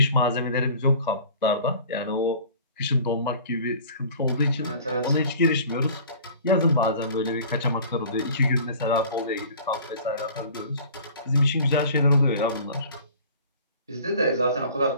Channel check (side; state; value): both; inverted; correlation -0.46